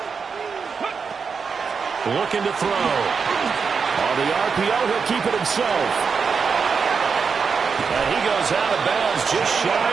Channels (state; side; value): quieter; left; 5.6 dB